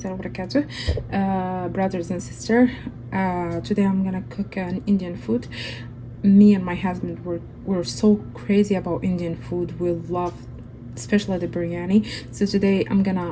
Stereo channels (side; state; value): both; identical; correlation 1.00